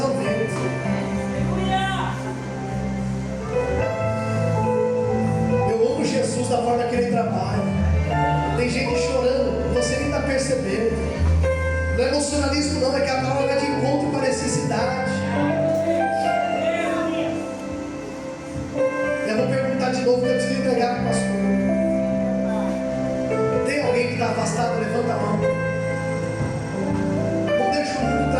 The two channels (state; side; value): identical; both; correlation 1.00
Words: ao vento. Eu amo Jesus da forma que Ele trabalha. Tem gente chorando, você nem está percebendo. Não é emocionalismo não, é que a palavra vai de encontro com a necessidade. Eu vou perguntar de novo, que eu preciso entregar para o pastor. Tem alguém que está afastado? Levanta a mão. Não deixa o mundo